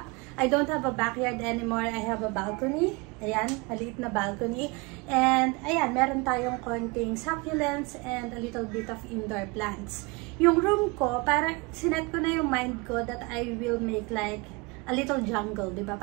I don't have a backyard anymore. I have a balcony. Ayan, maliit na balcony. And ayan, meron tayong konting succulents and a little bit of indoor plants. Yung room ko, parang sinet ko na yung mind ko that I will make like a little jungle, diba?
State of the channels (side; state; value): left; quieter; 27.0 dB